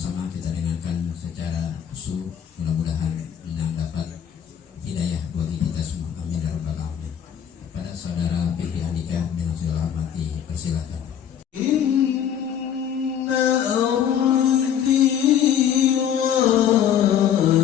kita dengarkan secara khusyuk, mudah-mudahan yang dapat hidayah bagi kita semua, amin ya rabbal alamin. Pada saudara Fikri Andika dengan segala hormati, persilakan. Inna ardi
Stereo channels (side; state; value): right; quieter; 9.0 dB